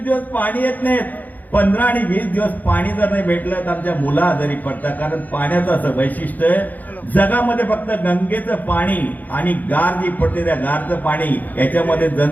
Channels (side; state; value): right; late; 0.082 ms